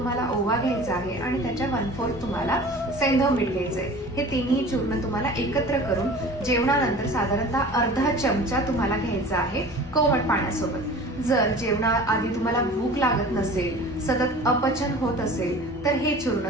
ओवा घ्यायचा आहे आणि त्याच्या 1/4 तुम्हाला सैंधव मीठ घ्यायचंय. हे तिन्ही चूर्ण तुम्हाला एकत्र करून जेवणानंतर साधारणतः अर्धा चमचा तुम्हाला घ्यायचा आहे कोमट पाण्यासोबत. जर जेवणाआधी तुम्हाला भूक लागत नसेल, सतत अपचन होत असेल तर हे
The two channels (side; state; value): both; normal; correlation 0.41